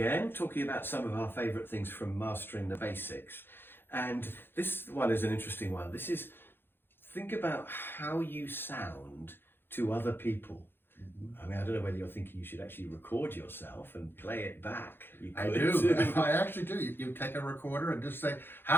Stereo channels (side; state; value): right; late; 0.10 ms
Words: talking about some of our favourite things from Mastering the Basics. And this one is an interesting one. This is, think about how you sound to other people. I mean, I don't know whether you're thinking you should actually record yourself and play it back. You I could do. too. I actually do. You take a recorder and just say,